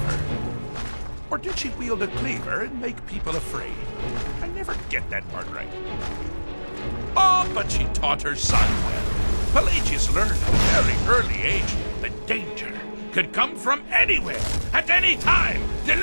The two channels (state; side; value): inverted; both; correlation -1.00